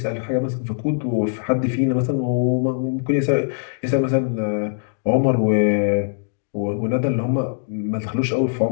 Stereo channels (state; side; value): silent; right; digital silence